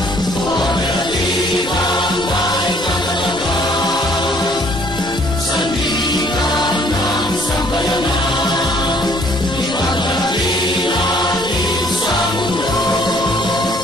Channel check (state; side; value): normal; both; correlation 0.61